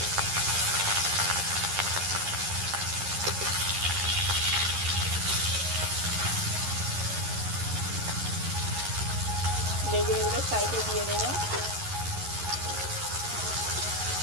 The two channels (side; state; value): left; late; 11 ms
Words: বেগুনগুলো সাইডে দিয়ে দেব।